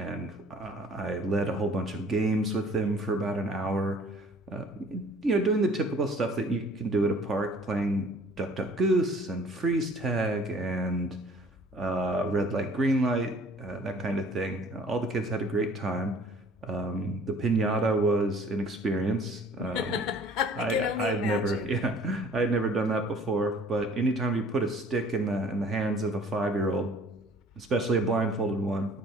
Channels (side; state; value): both; normal; correlation 0.53